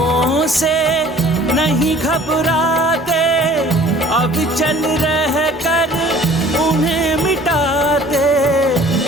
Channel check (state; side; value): normal; both; correlation 0.51